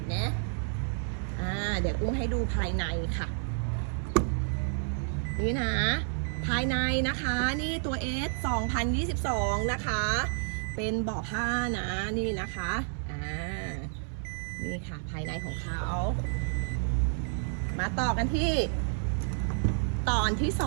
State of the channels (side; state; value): left; silent; 58 dB below the other